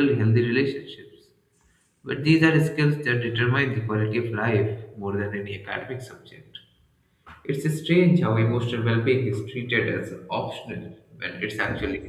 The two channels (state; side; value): identical; both; correlation 1.00